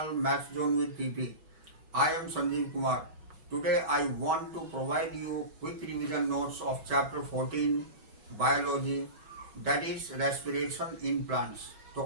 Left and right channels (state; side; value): late; left; 6.2 ms